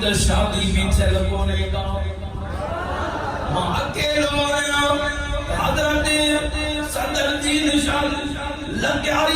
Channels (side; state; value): both; identical; correlation 1.00